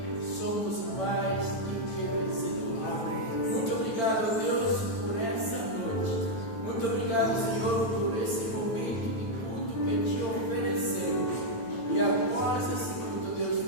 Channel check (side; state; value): right; late; 8.8 ms